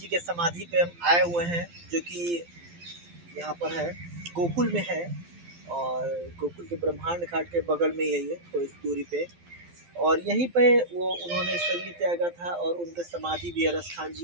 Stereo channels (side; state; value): left; late; 12 ms